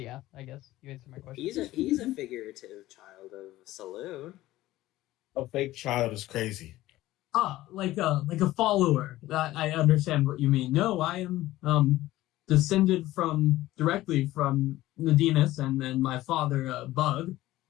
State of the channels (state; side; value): quieter; right; 16.2 dB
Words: yeah, I guess you answered my question. He's a figurative child of saloon. A fake child is crazy. Like a follower. I understand what you mean. No, I am descended directly from Nadines, and then my father, Bug.